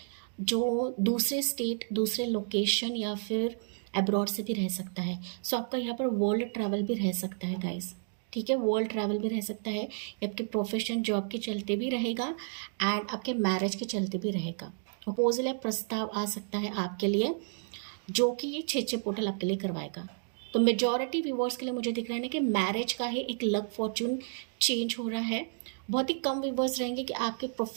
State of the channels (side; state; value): left; silent; digital silence